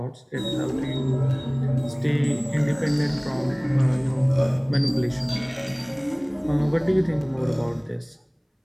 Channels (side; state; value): both; identical; correlation 1.00